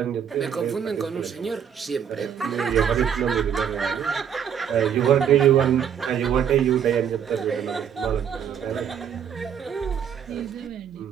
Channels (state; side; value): quieter; left; 8.3 dB